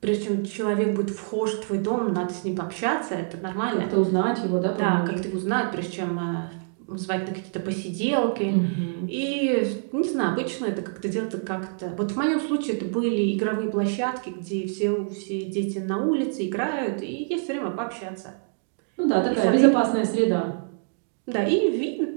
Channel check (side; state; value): left; silent; digital silence